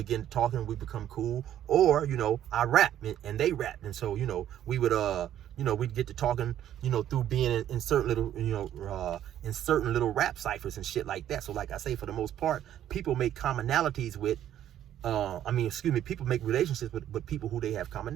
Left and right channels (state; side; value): quieter; left; 11.3 dB